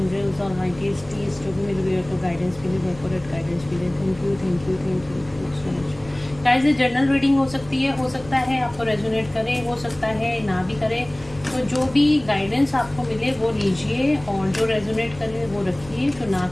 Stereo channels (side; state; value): left; noise; rumble, 20 dB below the sound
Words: और माइटीज जो भी मेरे व्यूअर को गाइडेंस मिले, वो एक्यूरेट गाइडेंस मिले। Thank you thank you thank you so much guys. ये जर्नल रीडिंग हो सकती है, हो सकता है आपको रेजोनेट करे, हो सकता है ना भी करे। तो जो भी गाइडेंस आपको मिले वो लीजिए, और जो रेजोनेट करे वो रखिए, जो ना